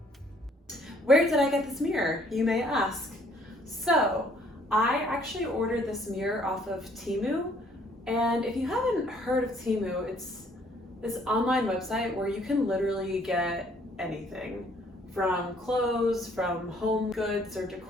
Where did I get this mirror, you may ask? So, I actually ordered this mirror off of Temu, and if you haven't heard of Temu, it's this online website where you can literally get anything, from clothes, from home goods or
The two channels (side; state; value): both; normal; correlation 0.62